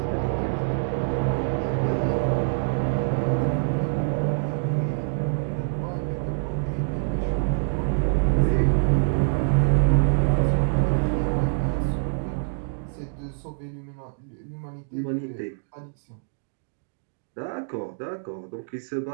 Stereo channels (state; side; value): silent; left; digital silence